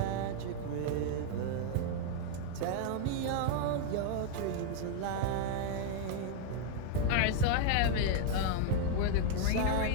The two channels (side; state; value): both; different; correlation -0.01